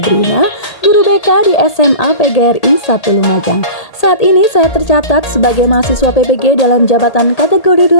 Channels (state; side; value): late; right; 1.8 ms